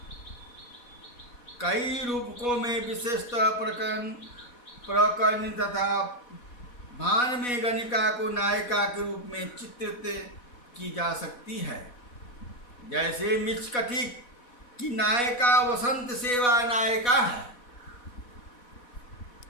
कई रूपकों में विशेषतः प्रकरण तथा भान में गणिका को नायिका के रूप में चित्रित की जा सकती है। जैसे मिचकटिक की नायिका वसंत सेवा नायिका है।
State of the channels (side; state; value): right; late; 4.1 ms